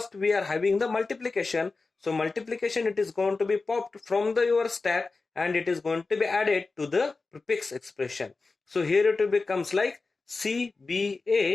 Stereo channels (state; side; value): quieter; right; 3.9 dB